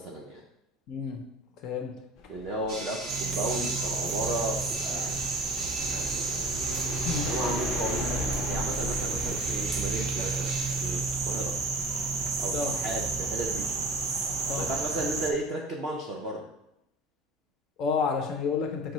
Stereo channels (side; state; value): both; normal; correlation 0.41